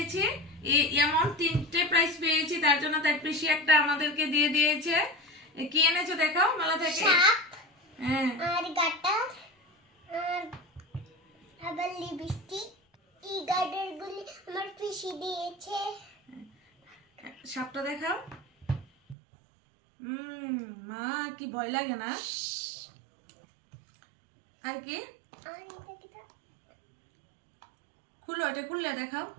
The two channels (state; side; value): drops out; left; at 19.2 s